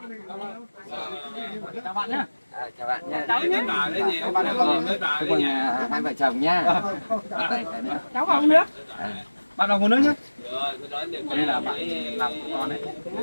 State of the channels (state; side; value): inverted; both; correlation -1.00